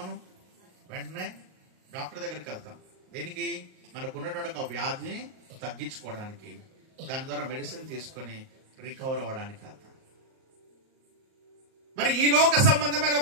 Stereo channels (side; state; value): left; late; 38 ms